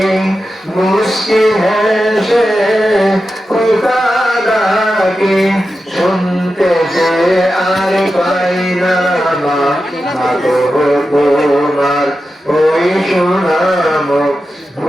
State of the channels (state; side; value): normal; both; correlation 0.91